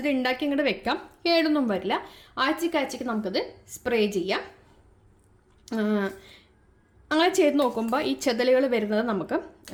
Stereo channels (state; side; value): identical; both; correlation 1.00